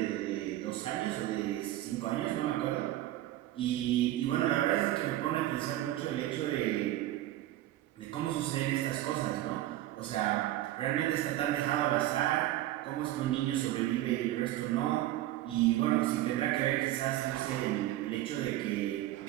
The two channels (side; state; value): left; quieter; 14.7 dB